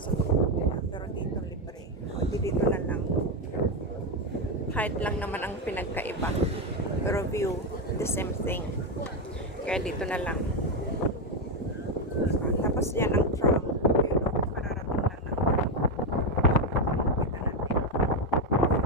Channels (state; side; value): normal; both; correlation 0.07